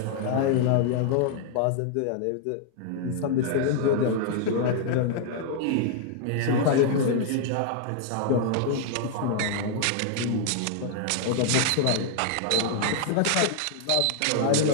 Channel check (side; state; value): both; different; correlation -0.01